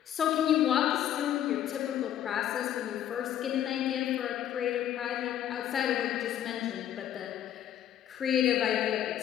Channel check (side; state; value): right; quieter; 10.9 dB